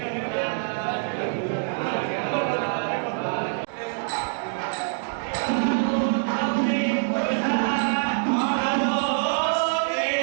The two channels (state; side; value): silent; left; digital silence